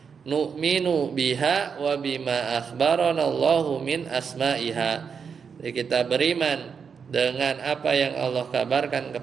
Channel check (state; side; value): quieter; left; 6.3 dB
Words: Nu'minu biha wa bima akhbarana Allahu min asma'iha. Jadi kita beriman dengan apa yang Allah kabarkan